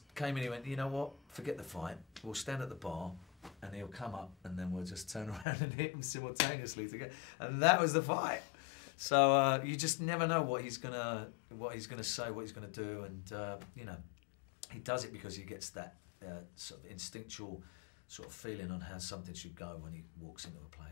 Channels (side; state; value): right; drops out; at 5.5 s